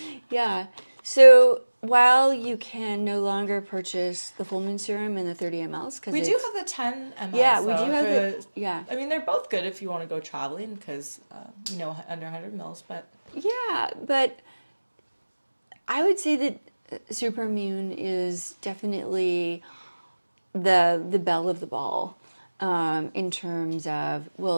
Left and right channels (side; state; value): both; inverted; correlation -1.00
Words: Yeah. So while you can no longer purchase the Full Moon serum in the 30 mLs, because we do have the 10 mLs. Yeah, we do have the. Yeah. I mean, they're both good if you want to go traveling because under 100 mils, but. Yeah, but I would say that Supermoon is definitely the belle of the ball in terms of,